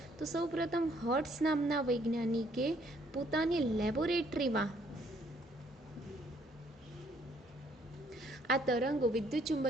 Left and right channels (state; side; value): normal; both; correlation 0.66